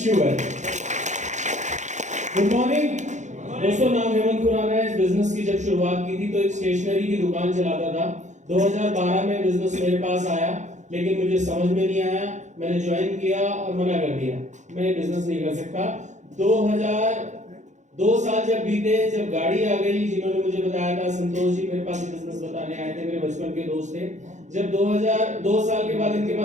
you well. Good morning दोस्तों, नाम हेमंत खुराना है। इस बिजनेस की जब शुरुआत की थी तो एक स्टेशनरी की दुकान चलाता था। 2012 में बिजनेस मेरे पास आया, लेकिन मुझे समझ में नहीं आया, मैंने ज्वाइन किया और मना कर दिया, मैं बिजनेस नहीं कर सकता। 2 साल जब बीते, जब गाड़ी आ गई, जिन्होंने मुझे बताया था संतोष जी मेरे पास बिजनेस बताने आए थे, मेरे बचपन के दोस्त थे। जब 2 साल के बाद इनके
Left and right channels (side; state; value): left; late; 0.35 ms